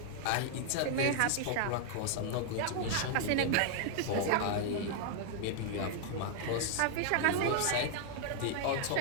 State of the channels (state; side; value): different; both; correlation 0.00